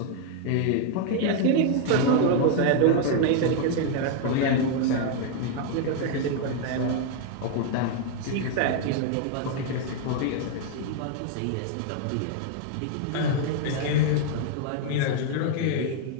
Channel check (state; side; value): different; both; correlation 0.00